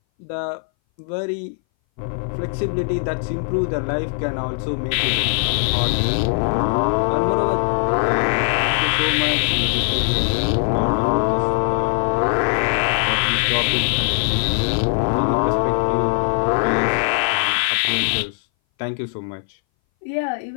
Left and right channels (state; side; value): silent; right; 60 dB below the other